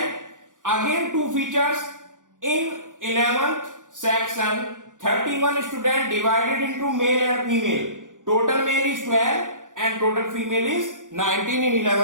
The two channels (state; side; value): late; left; 0.88 ms